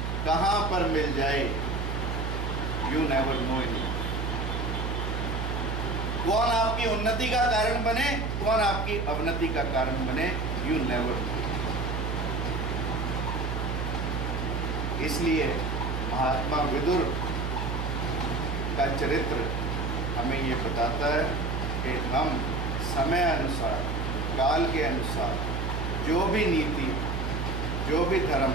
कहां पर मिल जाए, यू नेवर नो इन। कौन आपकी उन्नति का कारण बने, कौन आपकी अवनति का कारण बने, यू नेवर नो। इसलिए महात्मा विदुर का चरित्र हमें ये बताता है कि हम समय अनुसार, काल के अनुसार जो भी नीति, जो भी धर्म,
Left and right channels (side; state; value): right; noise; hum, 1 dB below the sound